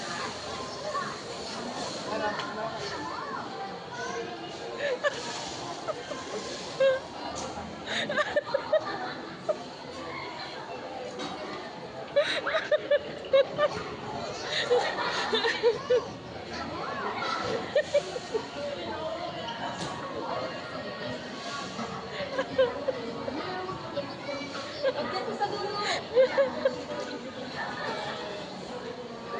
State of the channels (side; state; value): both; identical; correlation 1.00